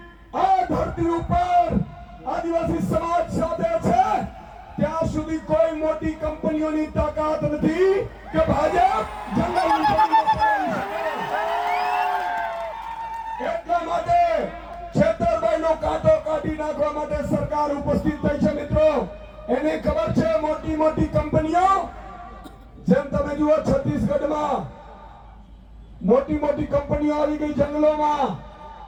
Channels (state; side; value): identical; both; correlation 1.00